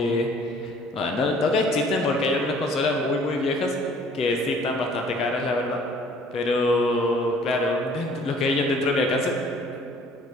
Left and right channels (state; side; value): normal; both; correlation 0.55